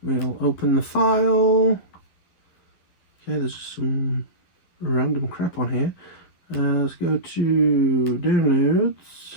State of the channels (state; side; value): late; right; 11 ms